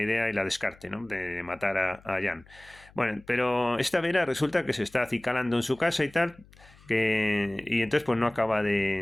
y la descarte, ¿no?, de matar a Jan. Bueno, pero esta Vera resulta que se está acicalando en su casa y tal, y entonces pues no acaba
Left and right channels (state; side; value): noise; left; hum, 26 dB below the sound